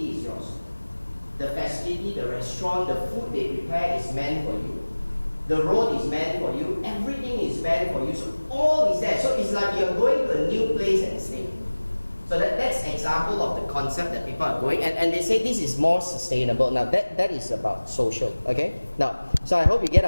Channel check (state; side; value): inverted; both; correlation -1.00